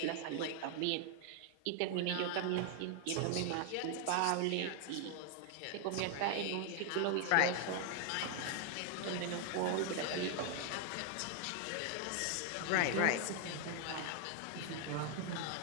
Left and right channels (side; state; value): both; different; correlation 0.00